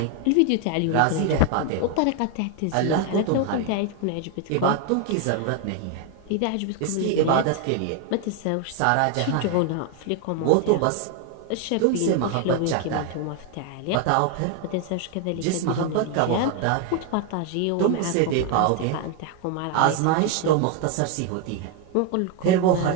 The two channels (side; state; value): both; different; correlation 0.01